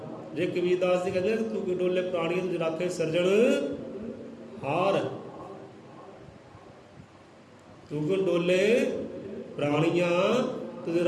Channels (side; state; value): both; identical; correlation 1.00